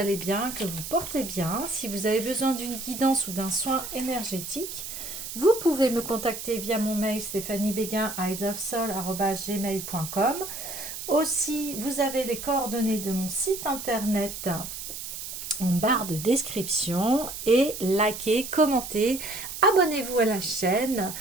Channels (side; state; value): right; noise; hiss, 8 dB below the sound